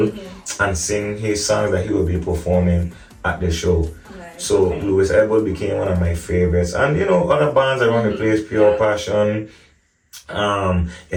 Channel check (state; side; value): identical; both; correlation 1.00